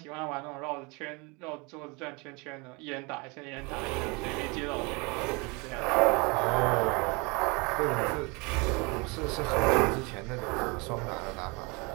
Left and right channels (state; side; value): quieter; left; 28.3 dB